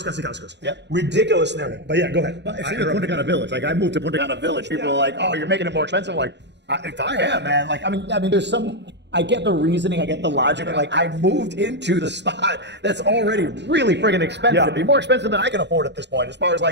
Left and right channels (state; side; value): late; left; 0.51 ms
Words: Casicascos. Yep. Ridiculous narrative. But yeah, go ahead. If you're in Punta Cana Village, like I moved to Punta Cana Village, people are like, "Oh, you're making it more expensive." I'm like, if I am, man. Like, I mean, there's some. I get the reasoning, I get the logic. Like, I moved into the spot that's already really friggin' expensive. Yeah. It'd be more expensive than I can afford at this point, as far as